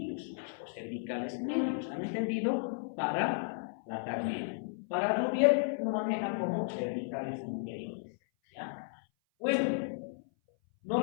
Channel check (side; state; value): right; silent; 55 dB below the other